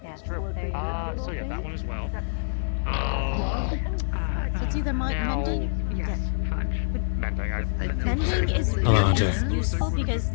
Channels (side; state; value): right; silent; digital silence